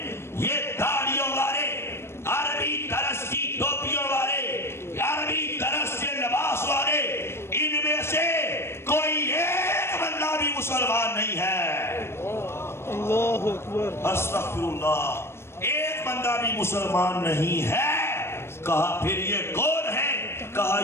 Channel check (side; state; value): right; late; 0.12 ms